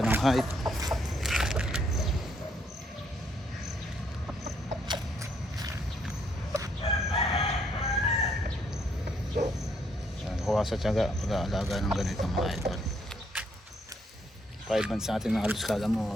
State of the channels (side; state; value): both; normal; correlation 0.71